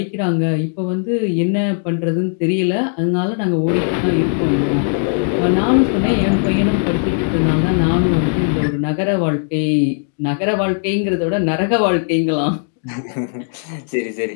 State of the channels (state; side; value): silent; right; digital silence